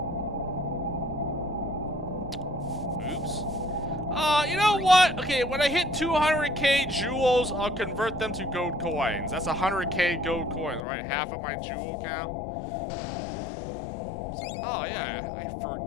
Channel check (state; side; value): drops out; right; at 10.9 s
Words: Oops. You know what? Okay, when I hit 200k jewels, I'll convert them to gold coins. That's 100k gold coins, right? Half of my jewel count. Oh yeah, I